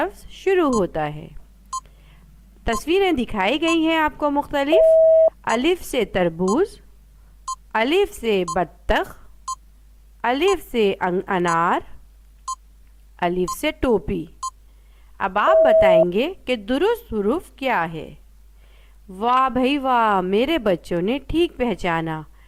शुरू होता है। तस्वीरें दिखाई गई हैं आपको मुख्तलिफ। अलिफ से तरबूज, अलिफ से बत्तख, अलिफ से अनार, अलिफ से टोपी। अब आप बताएंगे कि दुरुस्त हुरूफ क्या है। वाह भाई वाह, मेरे बच्चों ने ठीक पहचाना।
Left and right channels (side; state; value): both; identical; correlation 1.00